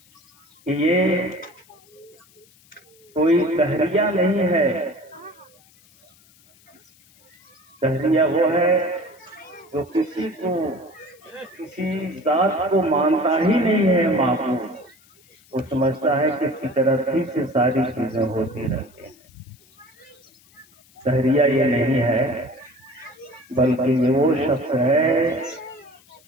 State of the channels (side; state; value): left; noise; hiss, 29 dB below the sound